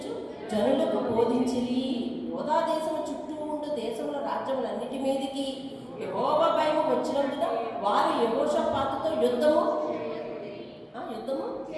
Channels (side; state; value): both; identical; correlation 1.00